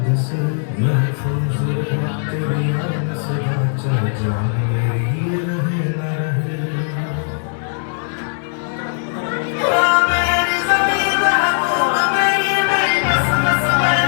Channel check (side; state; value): right; silent; 67 dB below the other